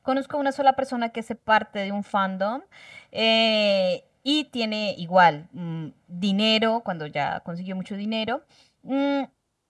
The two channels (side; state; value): both; identical; correlation 1.00